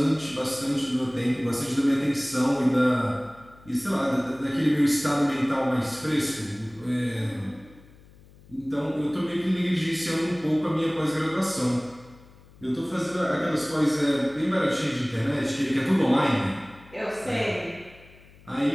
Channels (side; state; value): left; noise; hum, 24 dB below the sound